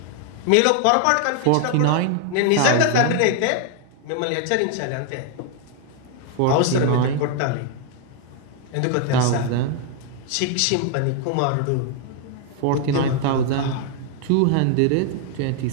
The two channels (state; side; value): different; both; correlation 0.00